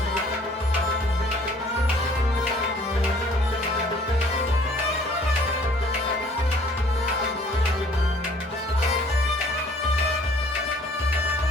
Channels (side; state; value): both; normal; correlation 0.56